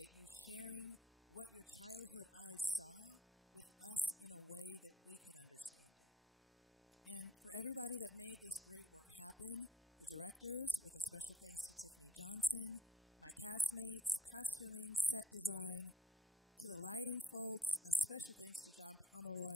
you sharing what your childhood eyes saw with us in a way that we could understand it. And for everybody that made this great work happen, the directors, with a special thanks to Tiffany Johnson, my castmates, costuming, set design, to the lighting folks, a special thanks to John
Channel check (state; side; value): normal; both; correlation 0.60